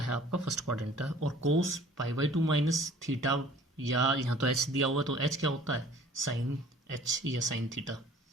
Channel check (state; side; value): normal; both; correlation 0.51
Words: है? आपका फर्स्ट क्वाड्रेंट है। और कोस पाई/2 माइनस थीटा, या यहाँ तो एच दिया हुआ है तो एच क्या होता है? साइन एच या साइन थीटा।